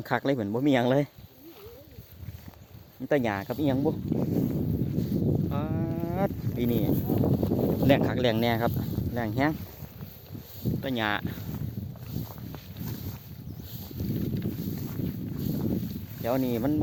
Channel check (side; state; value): both; identical; correlation 1.00